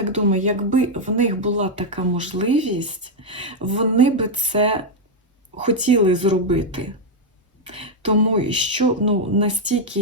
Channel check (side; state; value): both; normal; correlation 0.00